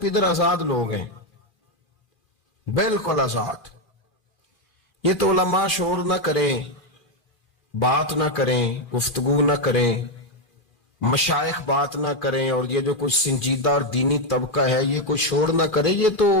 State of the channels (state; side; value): late; right; 2.4 ms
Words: آزاد لوگ ہیں، بالکل آزاد۔ یہ تو علماء شور نہ کریں، بات نہ کریں، گفتگو نہ کریں، مشائخ بات نہ کریں، اور یہ جو کچھ سنجیدہ اور دینی طبقہ ہے یہ کچھ شور نہ کرے، یہ تو